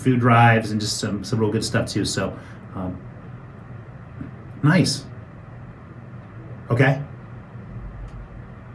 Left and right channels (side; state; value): both; identical; correlation 1.00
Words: drives and just some real good stuff too. So, um, nice. Okay.